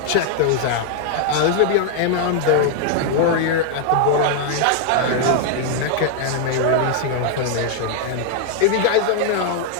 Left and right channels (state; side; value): different; both; correlation 0.00